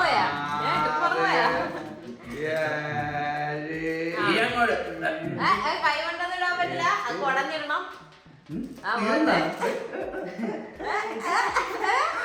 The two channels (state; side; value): identical; both; correlation 1.00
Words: ട്രിക്ക് മറന്നുപോയാ? കൈ കൊണ്ടൊന്നും ഇടാൻ പറ്റില്ല. അത് കുടഞ്ഞിടണം.